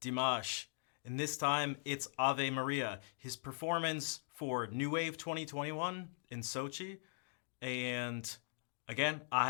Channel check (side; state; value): right; silent; digital silence